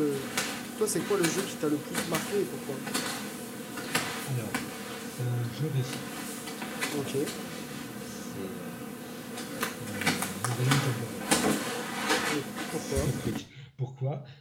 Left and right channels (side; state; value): both; identical; correlation 1.00